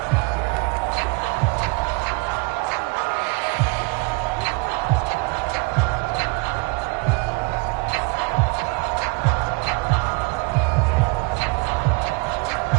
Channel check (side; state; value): left; quieter; 28.5 dB